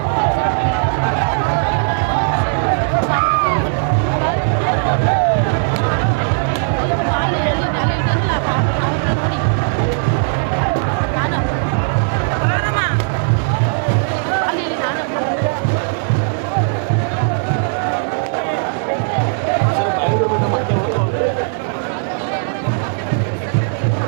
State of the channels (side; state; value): left; silent; 68 dB below the other